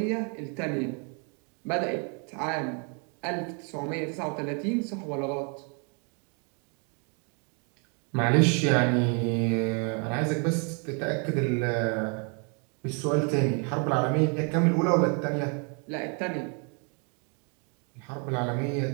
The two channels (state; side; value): quieter; left; 37.5 dB